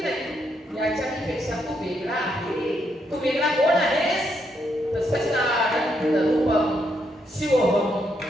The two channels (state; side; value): normal; both; correlation 0.77